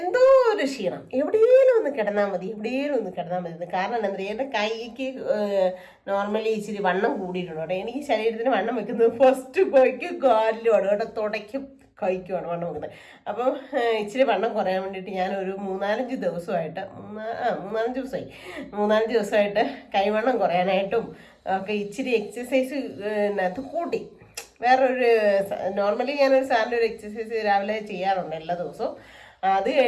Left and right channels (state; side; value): identical; both; correlation 1.00